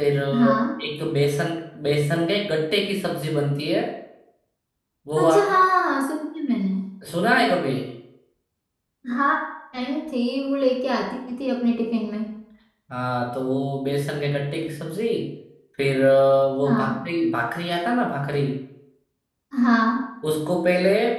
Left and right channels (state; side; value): identical; both; correlation 1.00